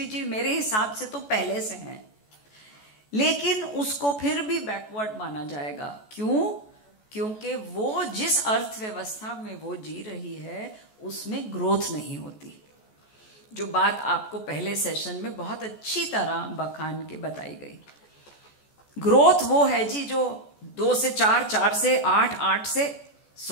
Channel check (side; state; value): right; late; 14 ms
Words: मेरे हिसाब से तो पहले से हैं, लेकिन उसको फिर भी बैकवर्ड माना जाएगा। क्यों? क्योंकि वो जिस अर्थव्यवस्था में वो जी रही है उसमें ग्रोथ नहीं होती, जो बात आपको पहले सेशन में बहुत अच्छी तरह बखान के बताई गई। ग्रोथ वो है जी जो 2 से 4, 4 से 8, 8 से